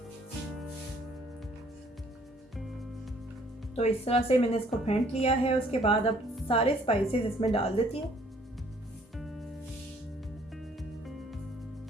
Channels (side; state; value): both; normal; correlation 0.61